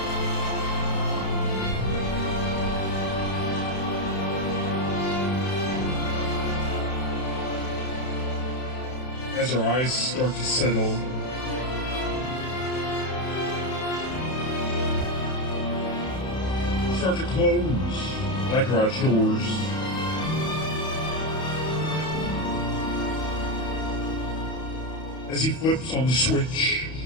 As our eyes start to settle, start to close like garage doors. As he flips on the switch,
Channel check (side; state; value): right; late; 31 ms